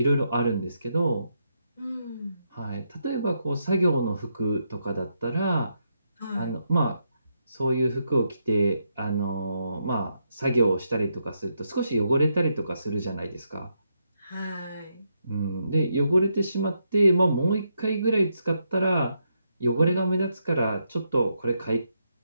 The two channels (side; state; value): both; inverted; correlation -0.80